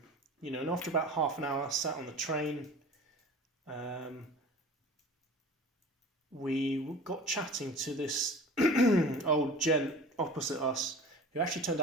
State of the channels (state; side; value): normal; both; correlation 0.40